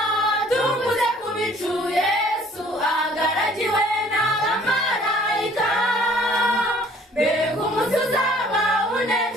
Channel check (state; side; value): normal; both; correlation 0.56